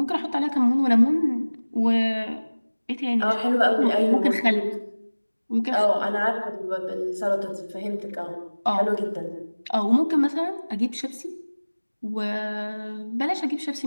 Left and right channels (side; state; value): both; inverted; correlation -1.00